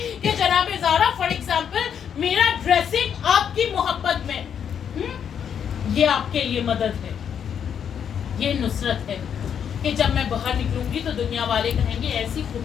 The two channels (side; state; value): right; quieter; 8.1 dB